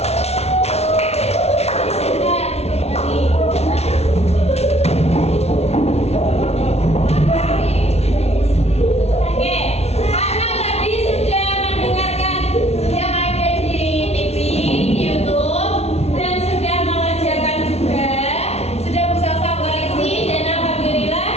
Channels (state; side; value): late; right; 0.31 ms